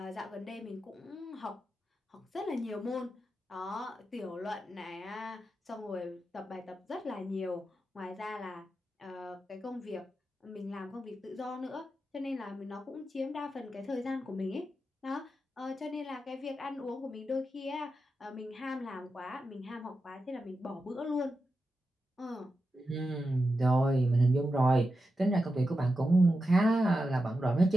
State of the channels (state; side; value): normal; both; correlation 0.89